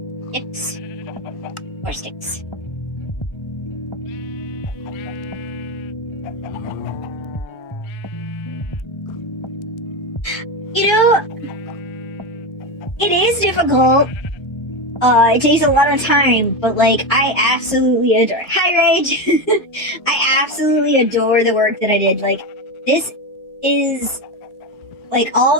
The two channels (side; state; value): right; late; 1.3 ms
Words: 6. 4 sticks. You know, it is difficult. It takes a lot of time, but like, I absolutely adore it. Hi, Rage! I absolutely adore the work that I did. Like, this is, like, all